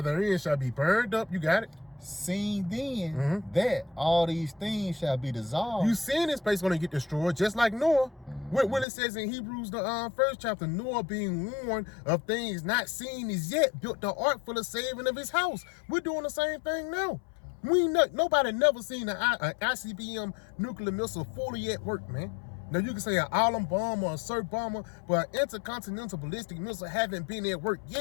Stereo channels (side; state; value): right; drops out; at 8.8 s